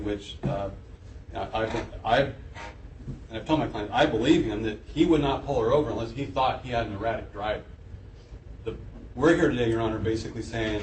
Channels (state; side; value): identical; both; correlation 1.00